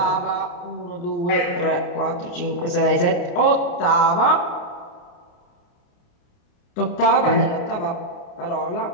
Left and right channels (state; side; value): late; right; 29 ms